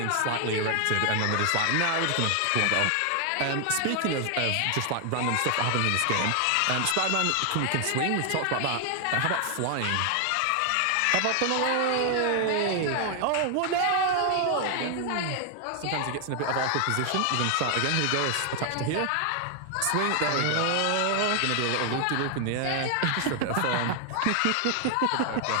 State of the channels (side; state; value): both; different; correlation 0.00